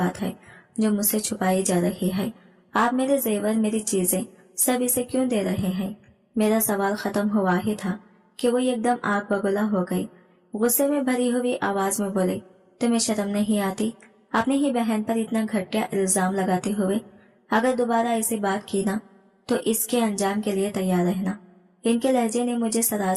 है जो मुझसे छुपाई जा रही है? आप मेरे जेवर, मेरी चीजें सब इसे क्यों दे रहे हैं? मेरा सवाल खत्म हुआ ही था कि वो एकदम आग बगुला हो गई। गुस्से में भरी हुई आवाज में बोले, तुम्हें शर्म नहीं आती अपनी ही बहन पर इतना घटिया इल्जाम लगाते हुए? अगर दोबारा ऐसी बात की ना तो इसके अंजाम के लिए तैयार रहना। इनके लहजे ने मुझे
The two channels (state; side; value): identical; both; correlation 1.00